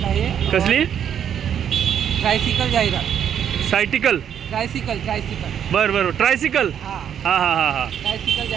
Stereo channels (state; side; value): quieter; left; 9.0 dB